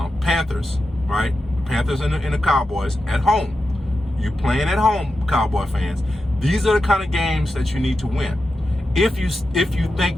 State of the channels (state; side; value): normal; both; correlation 0.90